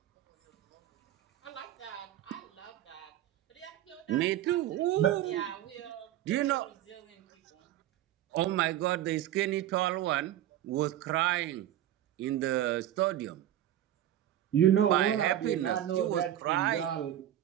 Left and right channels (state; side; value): quieter; left; 12.2 dB